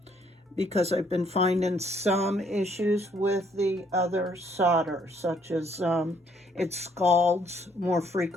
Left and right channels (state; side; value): normal; both; correlation 0.67